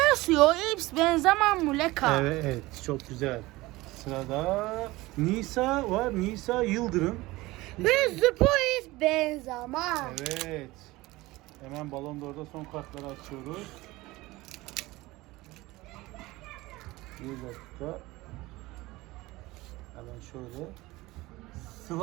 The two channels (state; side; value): quieter; left; 19.9 dB